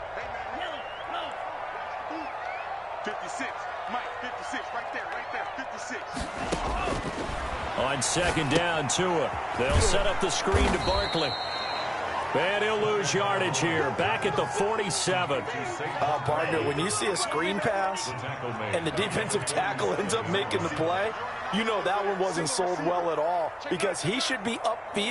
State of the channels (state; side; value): identical; both; correlation 1.00